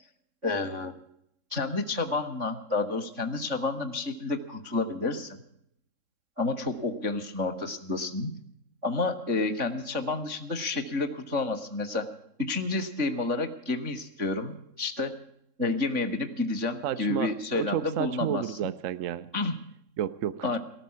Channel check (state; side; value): late; left; 3.6 ms